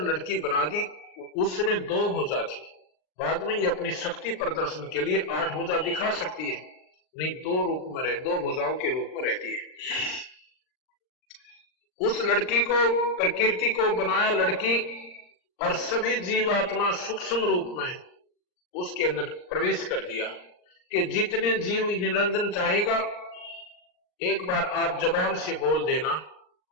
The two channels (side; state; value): right; late; 39 ms